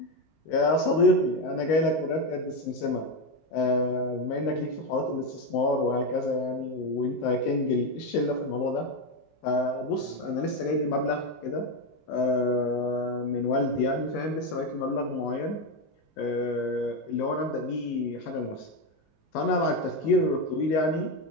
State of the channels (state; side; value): late; right; 19 ms